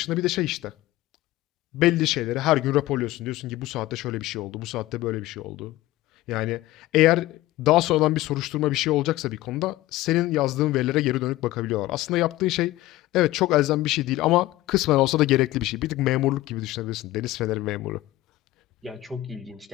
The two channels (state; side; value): quieter; right; 17.0 dB